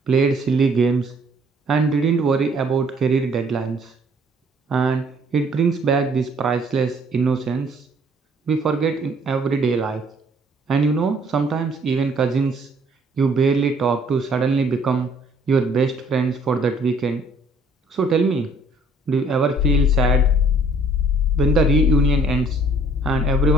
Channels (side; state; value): both; normal; correlation 0.60